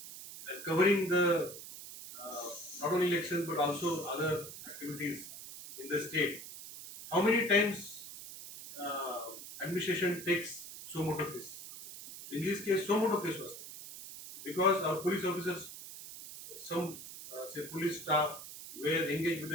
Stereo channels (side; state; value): right; noise; hiss, 12 dB below the sound